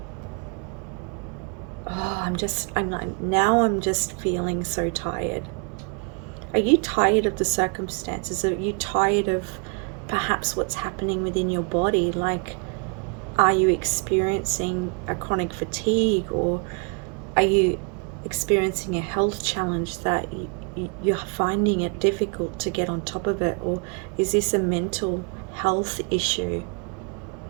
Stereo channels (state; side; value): quieter; left; 36.3 dB